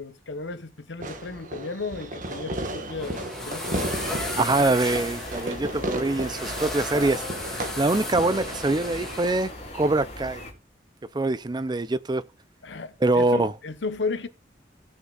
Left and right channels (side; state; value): both; normal; correlation 0.51